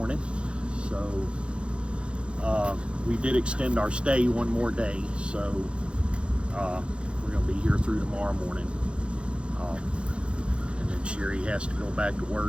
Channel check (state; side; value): late; left; 0.057 ms